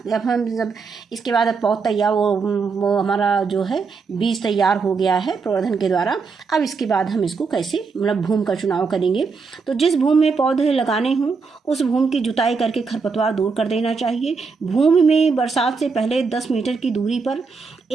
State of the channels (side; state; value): left; quieter; 4.9 dB